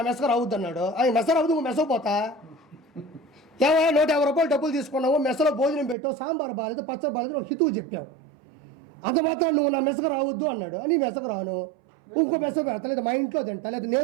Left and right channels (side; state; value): left; drops out; at 6.0 s